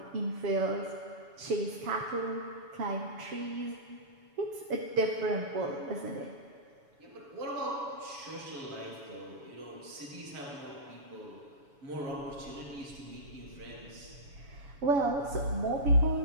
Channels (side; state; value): left; late; 7.1 ms